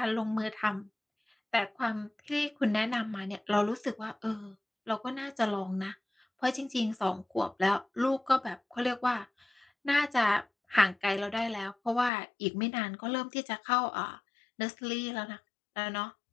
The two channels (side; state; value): right; drops out; at 12.1 s